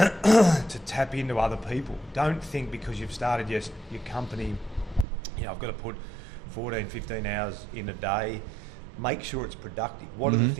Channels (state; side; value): drops out; left; at 5.1 s